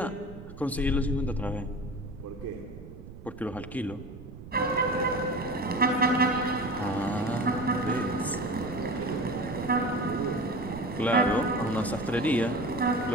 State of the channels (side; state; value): right; noise; rumble, 15 dB below the sound